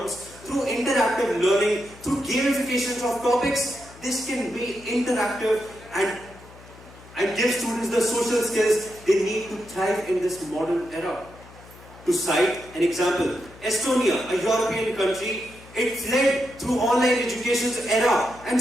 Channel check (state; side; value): noise; left; hum, 21 dB below the sound